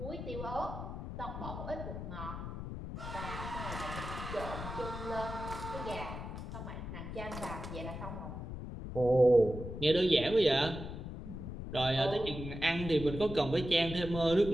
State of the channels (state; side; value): noise; left; rumble, 8 dB below the sound